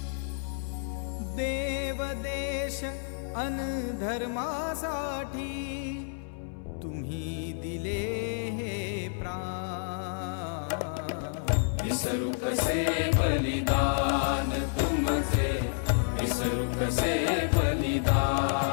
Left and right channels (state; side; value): silent; right; 58 dB below the other